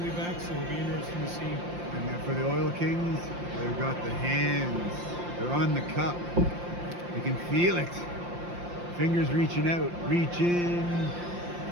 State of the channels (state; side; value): late; left; 5.7 ms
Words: be back, so it'll be interesting to see. And then for the Oil Kings, they've got the hands. They're on the cup. They can feel it. Fingers reaching out, reaching,